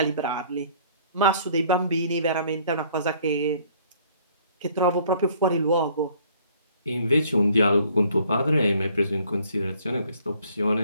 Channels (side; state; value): both; inverted; correlation -0.59